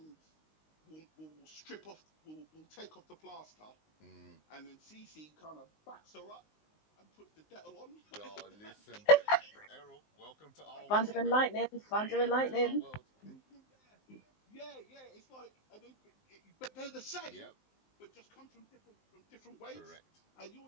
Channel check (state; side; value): late; right; 19 ms